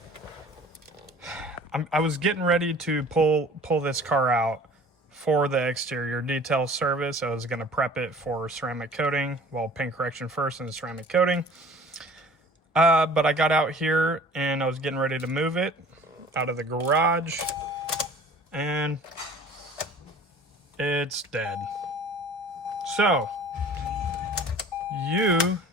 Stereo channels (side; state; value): both; normal; correlation 0.47